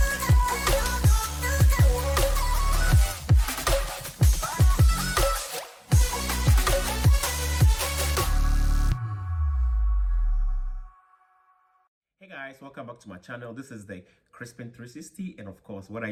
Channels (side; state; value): both; identical; correlation 1.00